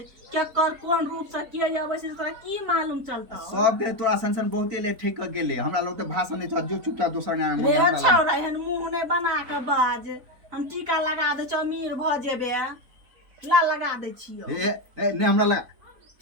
क्या कर कोन रूप से किया जावे से तोरा की मालूम चलता? सब के तोरा संसन बहुते ले ठीक गेले हमरा लोग तो भाषण नहीं था जो चुपचाप दोसर ना रे छौरा एहन मुंह नहीं बना के बाज, हम टीका लगा दे छ अमीर भ जेबे ला लगा दे छियो। ए नहीं हमरा लगा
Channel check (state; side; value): late; left; 3.9 ms